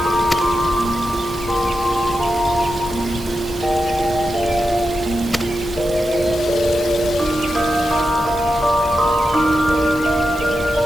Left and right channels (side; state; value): right; noise; hiss, 18 dB below the sound